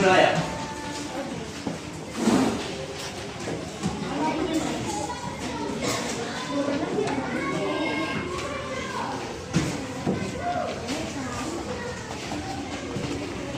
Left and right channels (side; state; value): both; identical; correlation 1.00